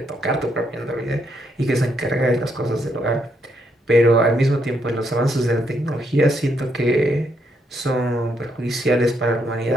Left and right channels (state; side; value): normal; both; correlation 0.76